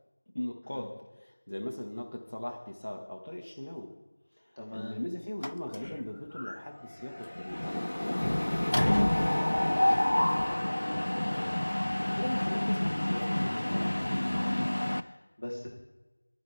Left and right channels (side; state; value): both; inverted; correlation -1.00